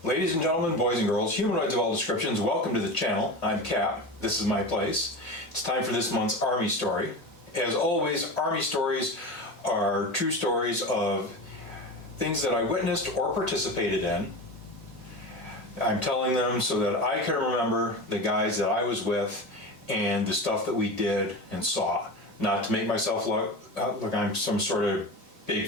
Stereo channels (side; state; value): both; normal; correlation 0.26